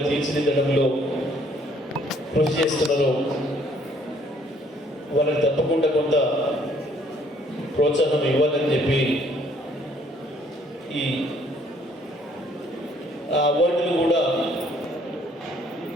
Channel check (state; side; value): normal; both; correlation 0.63